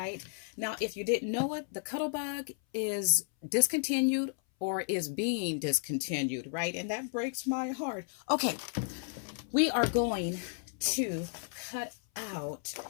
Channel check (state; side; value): silent; right; 56 dB below the other